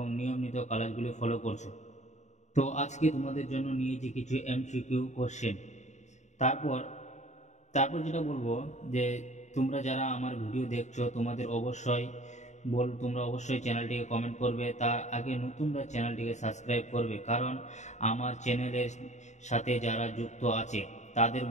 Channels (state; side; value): late; right; 0.34 ms